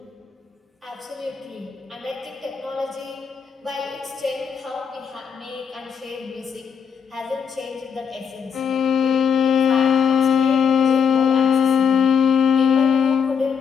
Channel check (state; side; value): quieter; right; 6.8 dB